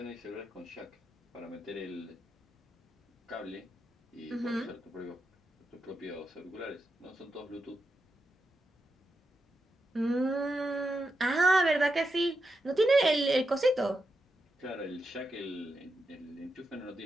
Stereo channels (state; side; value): normal; both; correlation 0.86